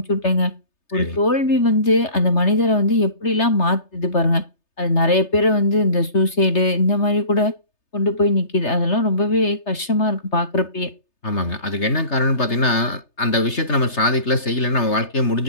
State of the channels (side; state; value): right; late; 3.3 ms